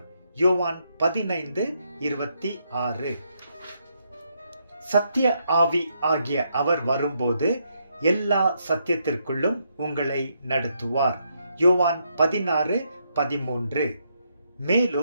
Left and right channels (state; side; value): inverted; both; correlation -0.77